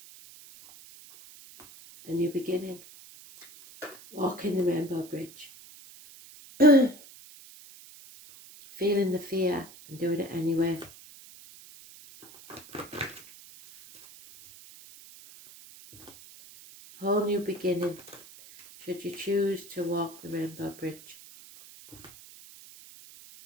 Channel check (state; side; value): noise; right; hiss, 19 dB below the sound